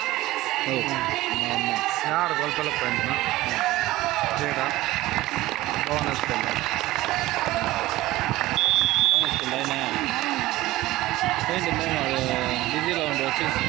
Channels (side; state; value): left; quieter; 17.4 dB